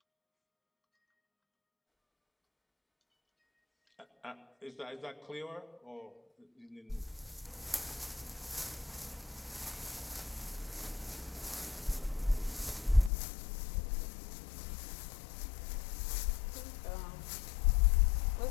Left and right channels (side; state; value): right; drops out; at 13.1 s